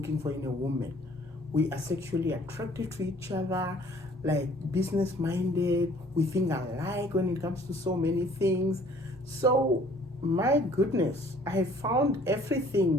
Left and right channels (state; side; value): normal; both; correlation 0.56